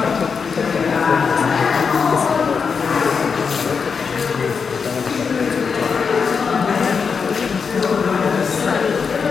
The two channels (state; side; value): quieter; right; 5.8 dB